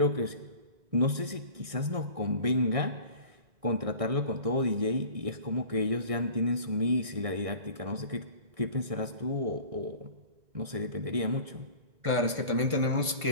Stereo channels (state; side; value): late; left; 1.6 ms